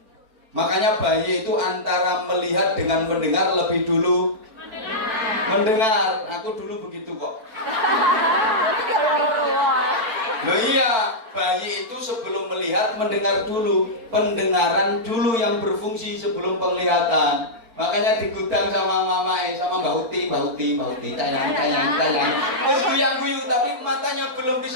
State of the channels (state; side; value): late; left; 4.5 ms